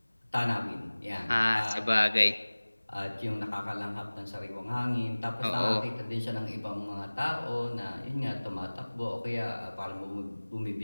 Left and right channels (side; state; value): both; inverted; correlation -1.00